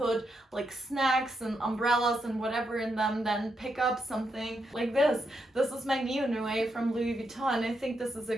like snacks and umbrellas and whatever in them? Then pick up something like this. This is my Neo Noe from Louis Vuitton. I think this is a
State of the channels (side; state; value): both; normal; correlation 0.82